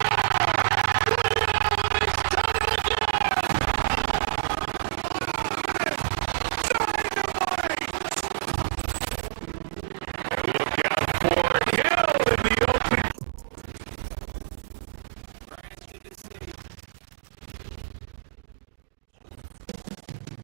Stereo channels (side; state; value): left; silent; digital silence